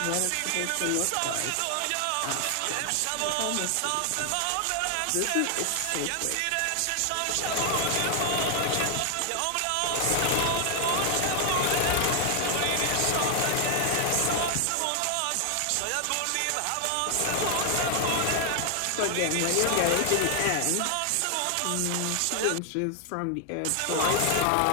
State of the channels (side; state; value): both; different; correlation 0.00